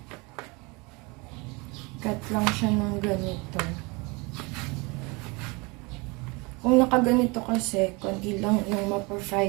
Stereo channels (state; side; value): quieter; left; 27.2 dB